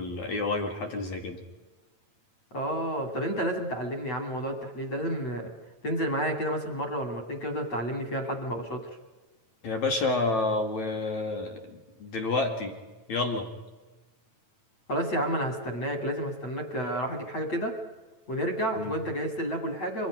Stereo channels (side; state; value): right; late; 9.0 ms